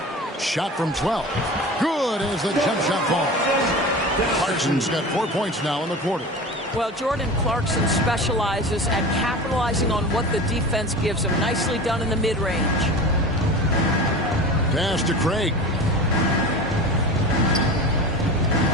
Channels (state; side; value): normal; both; correlation 0.33